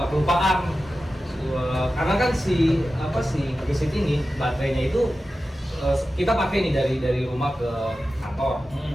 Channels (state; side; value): normal; both; correlation 0.93